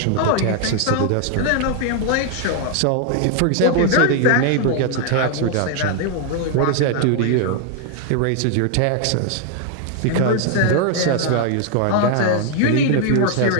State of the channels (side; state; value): both; different; correlation 0.00